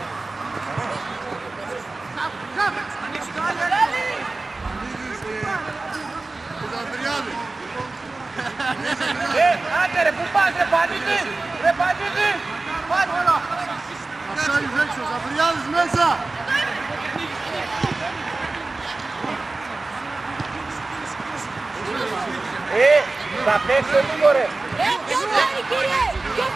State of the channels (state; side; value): quieter; left; 3.4 dB